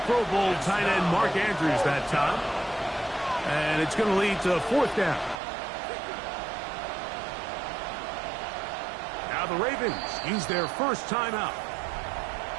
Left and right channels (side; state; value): left; drops out; at 5.4 s